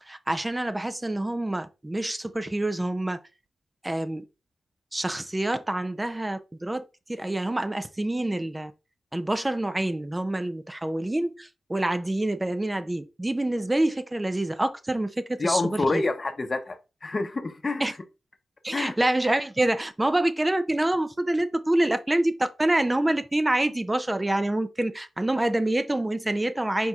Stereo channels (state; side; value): normal; both; correlation 0.98